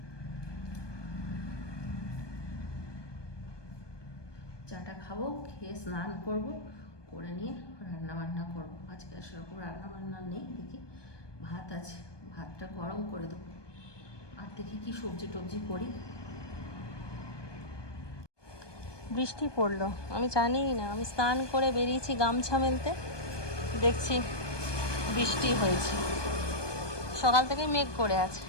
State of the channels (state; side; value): late; right; 1.2 ms